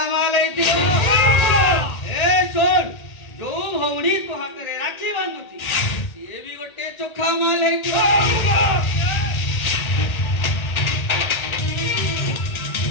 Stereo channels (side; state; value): right; late; 1.8 ms